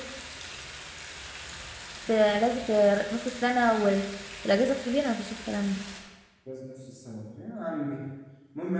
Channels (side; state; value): both; identical; correlation 1.00